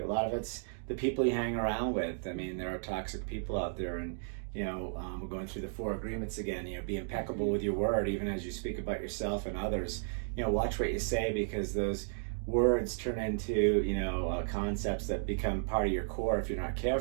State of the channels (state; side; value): silent; left; digital silence